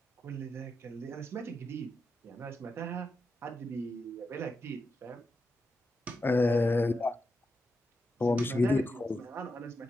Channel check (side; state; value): both; normal; correlation 0.87